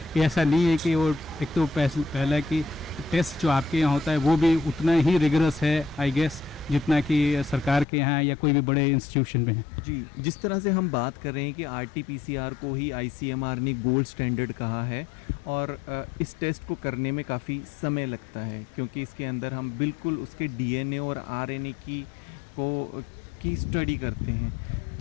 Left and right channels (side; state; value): right; drops out; at 7.9 s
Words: ऐसा नहीं है कि वो एक तो पहला कि टेस्ट जो आपके यहाँ होता है वो भी उतना ही रिगरस है आई गेस जितना कि सरकार के यहाँ या कोई भी बड़े इंस्टीट्यूशन में है. जी, जिस तरह से हम बात कर रहे हैं कि RT-PCR को ही ICMR ने गोल्ड स्टैंडर्ड कहा है, और इस टेस्ट को करने में काफ़ी समय लगता है क्योंकि इसके अंदर हम बिल्कुल उसके DNA और RNA की स्टडी करते हैं.